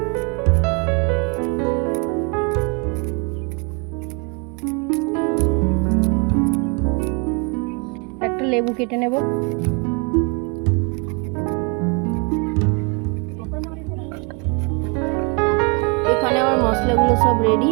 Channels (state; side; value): quieter; left; 31.8 dB